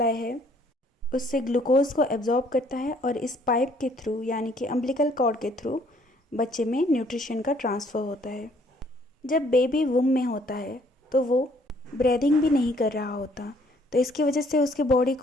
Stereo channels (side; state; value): both; normal; correlation 0.62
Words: है उससे ग्लूकोज को एब्जॉर्ब करता है और इस पाइप के थ्रू यानी कि अम्बिलिकल कॉर्ड के थ्रू बच्चे में न्यूट्रिशन का ट्रांसफ़र होता है। जब बेबी वूम में होता है तो वो ब्रीदिंग भी नहीं कर रहा होता, तो इसकी वजह से उसके बॉडी